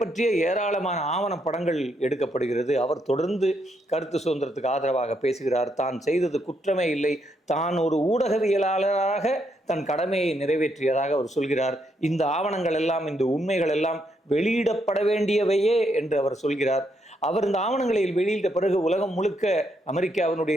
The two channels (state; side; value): normal; both; correlation 0.77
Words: ஏராளமான ஆவண படங்கள் எடுக்கப்படுகிறது. அவர் தொடர்ந்து கருத்து சுதந்திரத்துக்கு ஆதரவாக பேசுகிறார். தான் செய்தது குற்றமே இல்லை, தான் ஒரு ஊடகவியலாளராக தன் கடமையை நிறைவேற்றியதாக அவர் சொல்கிறார். இந்த ஆவணங்கள் எல்லாம், இந்த உண்மைகள் எல்லாம் வெளியிடப்பட வேண்டியவையே என்று அவர் சொல்கிறார். அவர் இந்த ஆவணங்களை வெளியிட்ட பிறகு உலகம் முழுக்க அமெரிக்காவினுடைய